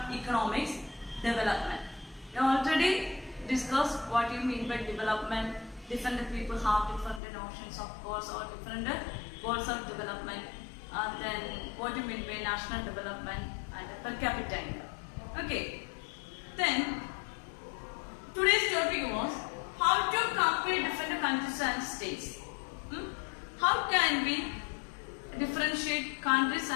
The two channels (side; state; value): right; drops out; at 7.2 s